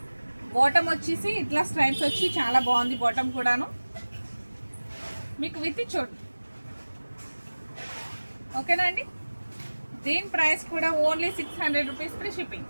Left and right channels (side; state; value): both; inverted; correlation -1.00